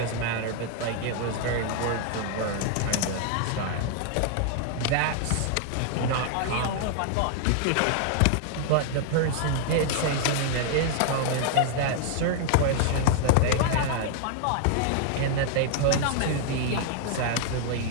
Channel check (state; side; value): different; both; correlation 0.00